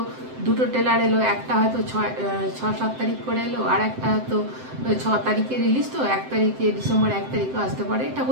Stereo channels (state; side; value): late; left; 7.8 ms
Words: দুটো ট্রেলার এলো, একটা হয়তো 6-7 তারিখ করে এলো, আর একটা হয়তো 6 তারিখে রিলিজ। তো 1 তারিখে ডিসেম্বর 1 তারিখও আসতে পারে, এটা